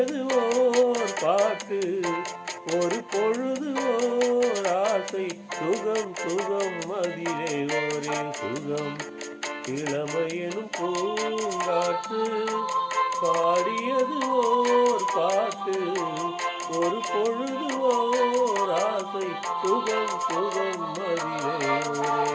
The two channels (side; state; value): both; identical; correlation 1.00